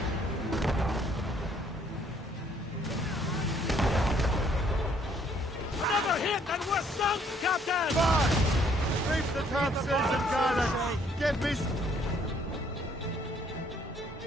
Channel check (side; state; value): both; normal; correlation 0.64